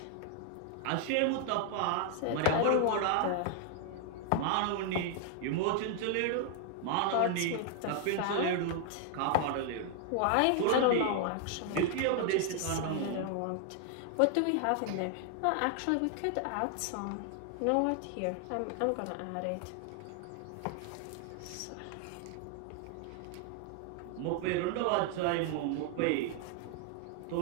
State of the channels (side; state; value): both; different; correlation 0.00